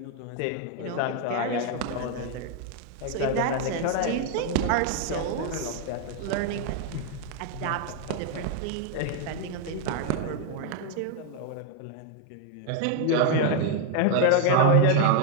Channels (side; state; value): both; different; correlation 0.01